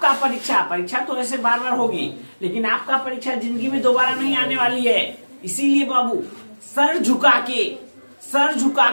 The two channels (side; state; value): both; inverted; correlation -1.00